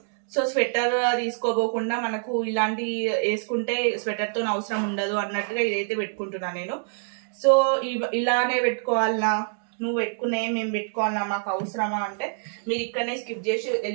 సో స్వెటర్ తీసుకోబోకుండా మనకు ఇలాంటి వేసుకుంటే స్వెటర్ తో అవసరం ఉండదు అన్నట్టుగా ఇదైతే పెట్టుకుంటున్నా నేను. సో ఇలానే పెట్టుకోవాలనా, నువ్వు పెట్టుకునే మేము పెట్టుకోవాలన్నా, మాకు అవసరమా అంటే మీరు ఇక్కడనే స్కిప్ చేసి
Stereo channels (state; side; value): silent; left; digital silence